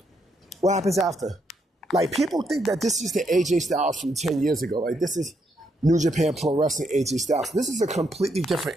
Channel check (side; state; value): both; normal; correlation 0.77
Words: What happens after? Like, people think that this is the AJ Styles from 10 years ago. Like, this is New Japan Pro Wrestling AJ Styles. This is a completely different